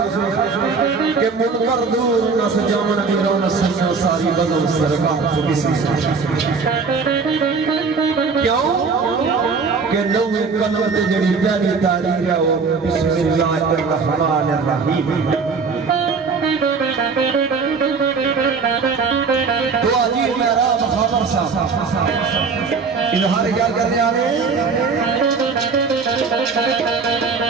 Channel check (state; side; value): quieter; left; 4.9 dB